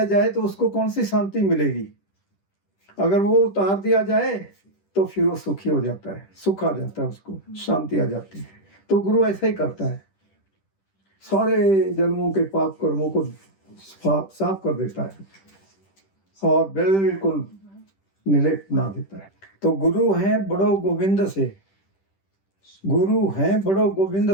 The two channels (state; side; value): late; right; 10 ms